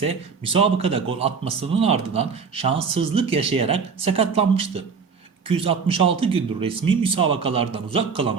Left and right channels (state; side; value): quieter; left; 5.6 dB